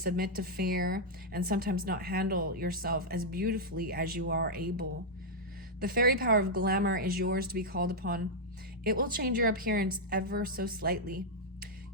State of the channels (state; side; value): normal; both; correlation -0.04